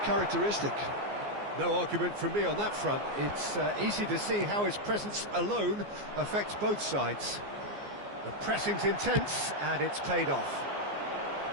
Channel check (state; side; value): late; left; 14 ms